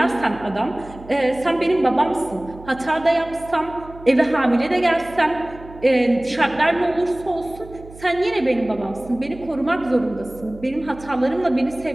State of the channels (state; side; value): noise; right; hum, 18 dB below the sound